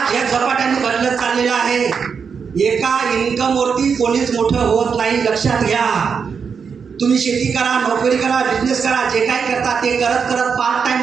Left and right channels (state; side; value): quieter; left; 6.1 dB